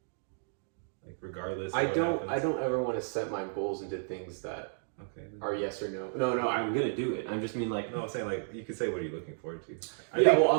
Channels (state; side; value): silent; left; digital silence